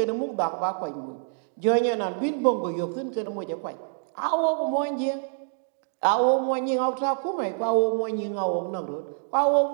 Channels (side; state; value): left; silent; digital silence